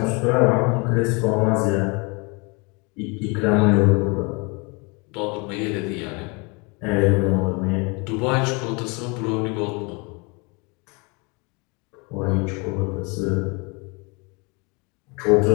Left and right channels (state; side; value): quieter; right; 29.9 dB